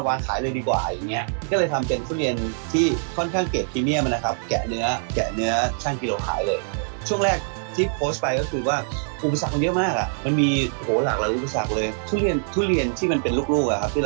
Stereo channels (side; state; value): left; silent; digital silence